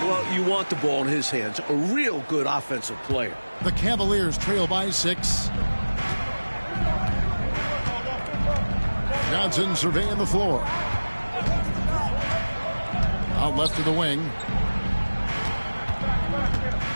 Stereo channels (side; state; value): both; inverted; correlation -1.00